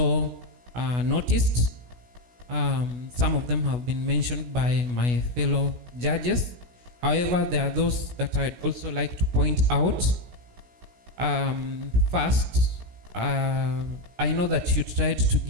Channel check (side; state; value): left; late; 16 ms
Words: noticed. Some of them have been mentioned by my fellow judges. However, there are those that I'd also like to point out. First, I know that you tried to